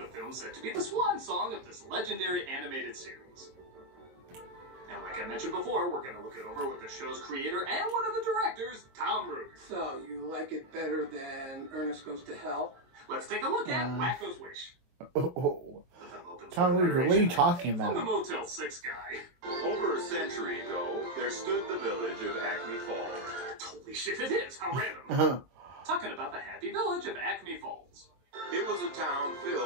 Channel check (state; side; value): late; left; 22 ms